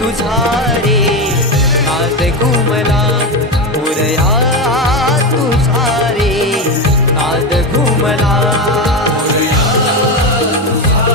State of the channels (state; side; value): normal; both; correlation 0.16